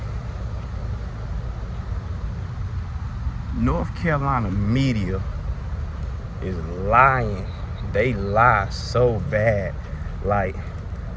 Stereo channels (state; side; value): identical; both; correlation 1.00